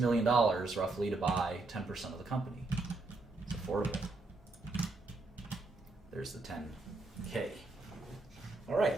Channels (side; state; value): left; quieter; 3.3 dB